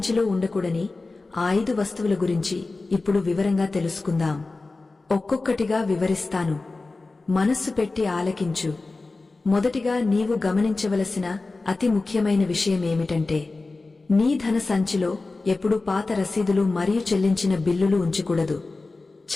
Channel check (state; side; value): quieter; right; 3.5 dB